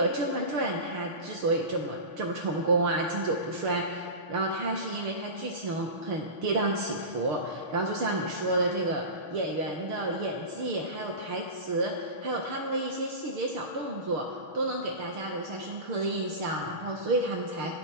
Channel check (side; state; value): left; late; 6.4 ms